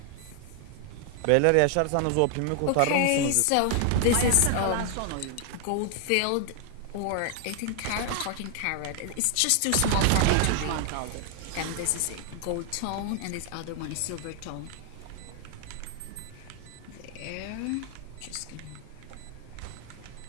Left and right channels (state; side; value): different; both; correlation 0.00